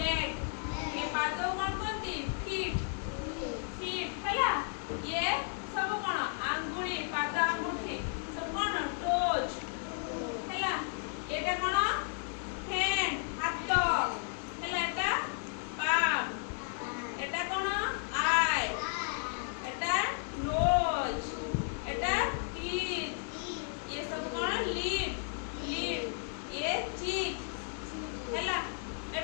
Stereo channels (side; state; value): right; silent; 55 dB below the other